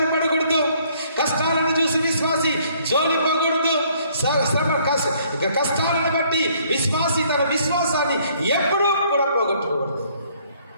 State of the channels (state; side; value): inverted; both; correlation -0.63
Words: పడకూడదు, కష్టాలను చూసి విశ్వాసి జోలిపోకూడదు. కష్టాలను బట్టి విశ్వాసి తన విశ్వాసాన్ని ఎప్పుడూ కూడా పోగొట్టుకోకూడదు.